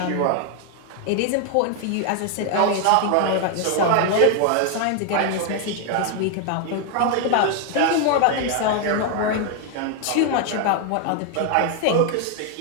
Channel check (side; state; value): both; different; correlation 0.00